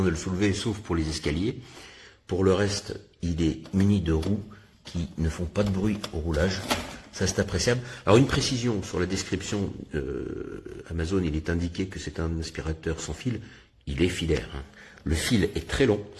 de le soulever sauf pour les escaliers, pour le reste il est muni de roues qui ne font pas de bruit au roulage. Ça, c'est appréciable. Alors, une précision sur la description Amazon, il est indiqué que c'est un aspirateur sans fil. Il est filaire. Hein. Le fil est très long.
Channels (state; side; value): identical; both; correlation 1.00